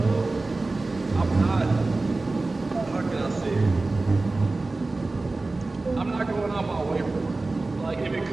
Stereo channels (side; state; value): left; quieter; 3.3 dB